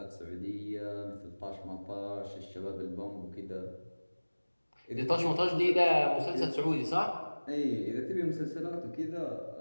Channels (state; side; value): inverted; both; correlation -1.00